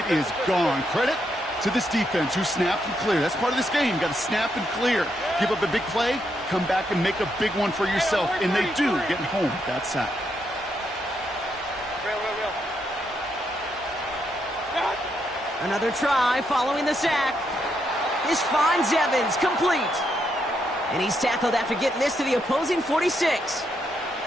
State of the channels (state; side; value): normal; both; correlation 0.79